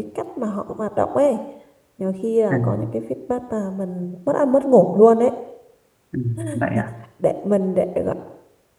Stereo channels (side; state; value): both; identical; correlation 1.00